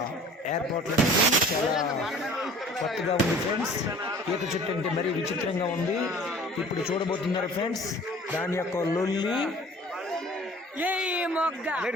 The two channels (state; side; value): normal; both; correlation 0.48